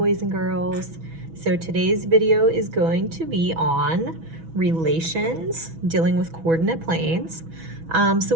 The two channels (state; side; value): late; left; 6.1 ms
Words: and girls. So today's video is going to be on relations, dealing with coordinate planes. So